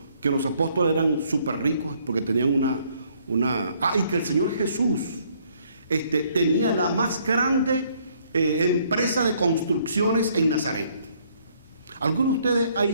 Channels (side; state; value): both; inverted; correlation -0.66